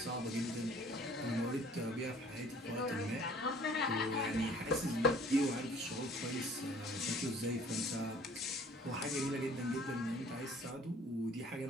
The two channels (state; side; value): normal; both; correlation 0.54